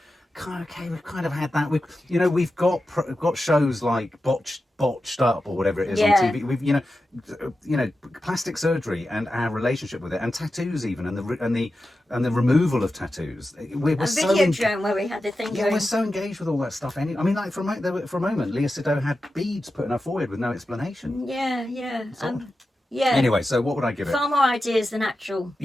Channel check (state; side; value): normal; both; correlation 0.91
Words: Okay, we've kind of had that. We've got shows like Botched botched up or whatever it is Yeah. on TV. We've you know plastic surgery and our relationship with it, and tattoos even, and the removal of tattoos. We're A so Videodrome where we had the thing yeah, going. we're so engaged with all that stuff. I mean, like for a moment, Léa Seydoux had beads put in her forehead with no explanation. Yeah. Yeah. Anyway, so what would I give it? Far more ideas than actual.